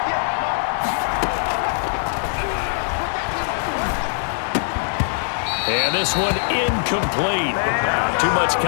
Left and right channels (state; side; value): silent; right; 56 dB below the other